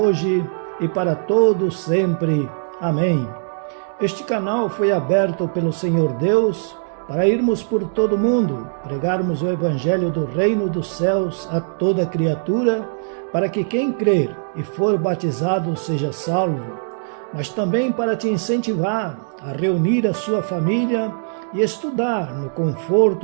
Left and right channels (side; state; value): left; silent; digital silence